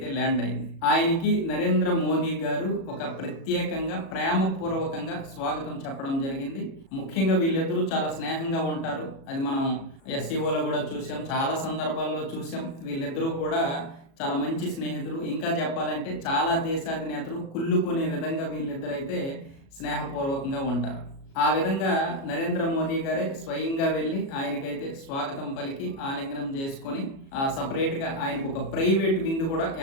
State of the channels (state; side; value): late; right; 37 ms